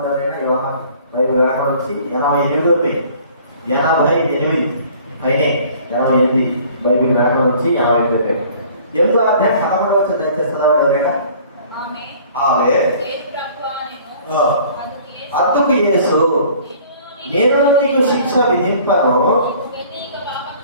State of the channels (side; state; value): both; inverted; correlation -0.52